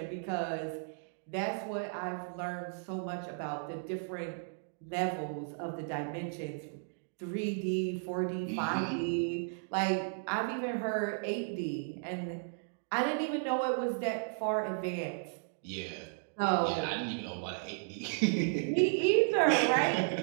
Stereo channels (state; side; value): silent; left; digital silence